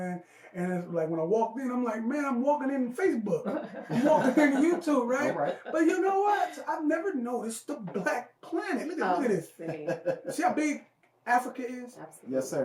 And it's like when I walked in, I'm like, man, I'm walking in Facebook. I'm walking in YouTube, right? All right. But you know what? I've never noticed the black planet. Look at this. See how big Africa is? Absolutely. Yes,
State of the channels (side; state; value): both; identical; correlation 1.00